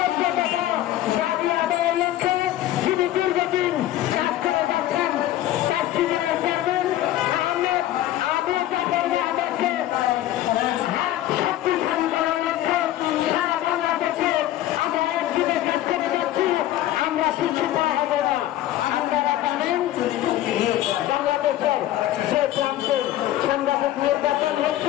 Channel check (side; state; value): right; quieter; 13.8 dB